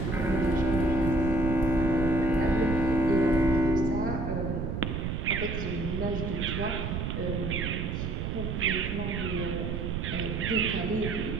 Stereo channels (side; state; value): right; noise; rumble, 3 dB below the sound